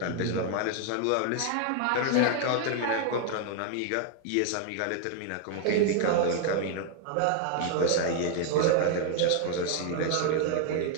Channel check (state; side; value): different; both; correlation 0.00